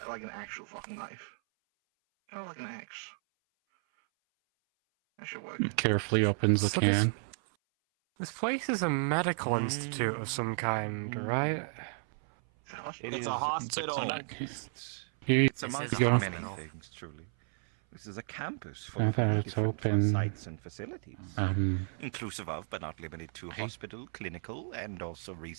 like an actual fucking knife. Kind of like an axe. That should work. Carefully opens the So can. This place is a medical institute of some kind, right? It is a hospital. It's Here amongst you go. many things, truly. This is a campus I full thought of it's different open. sites and facilities, Um, inclusive of, but not limited to, hospital, clinical, and also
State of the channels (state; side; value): silent; left; 56 dB below the other